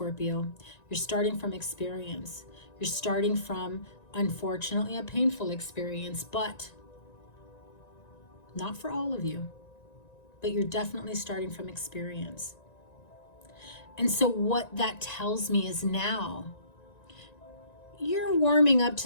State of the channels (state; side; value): late; right; 1.9 ms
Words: You're starting from experience. You're starting from, unfortunately, a painful experience, but not for all of you. But you're definitely starting from experience. And so what that tells me is now you're warming up